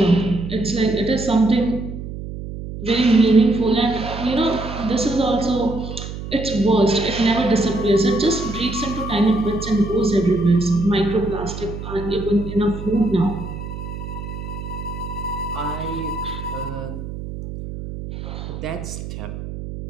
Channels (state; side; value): noise; right; hum, 9 dB below the sound